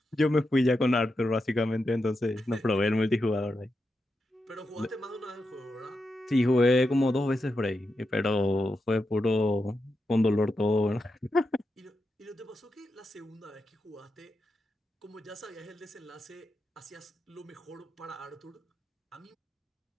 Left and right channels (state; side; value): normal; both; correlation 0.87